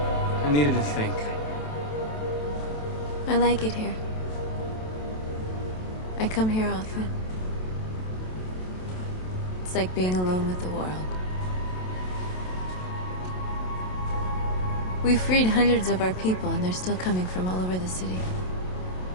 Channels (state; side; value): late; right; 27 ms